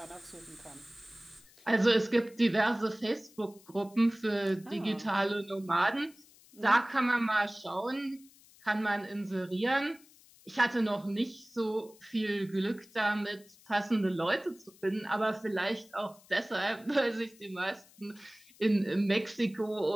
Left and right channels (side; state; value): left; noise; hiss, 26 dB below the sound